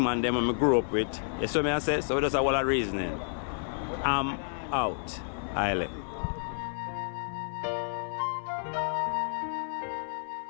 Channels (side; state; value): right; silent; 58 dB below the other